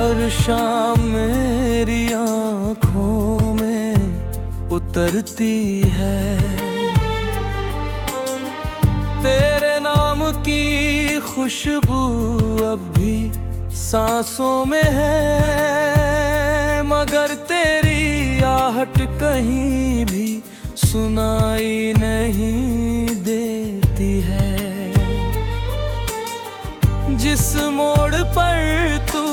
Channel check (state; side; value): identical; both; correlation 1.00